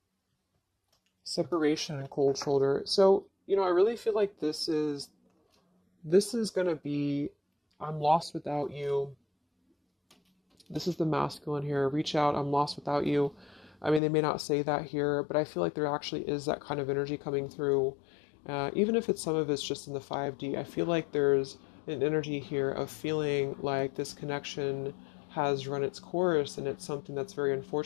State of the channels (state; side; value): drops out; right; at 14.0 s